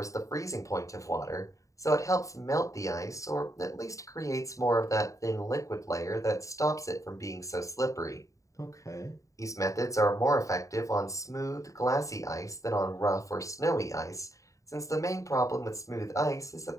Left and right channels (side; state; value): right; late; 0.16 ms